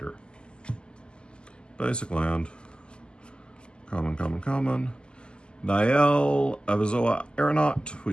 Basic land. Common. Nael, Avizoa Aeronaut. We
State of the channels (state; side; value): late; right; 0.049 ms